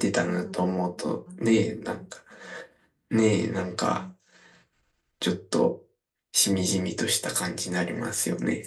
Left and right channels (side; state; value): both; identical; correlation 1.00